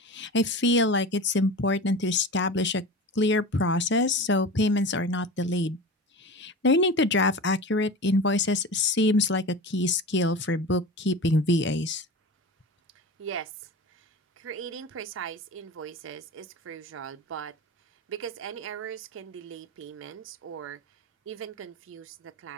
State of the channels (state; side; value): normal; both; correlation 0.31